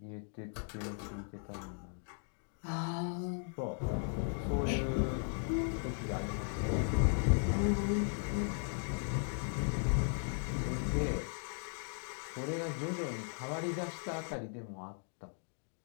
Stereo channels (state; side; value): silent; right; 53 dB below the other